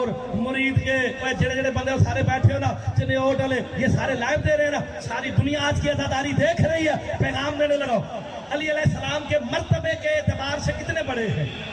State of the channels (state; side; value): identical; both; correlation 1.00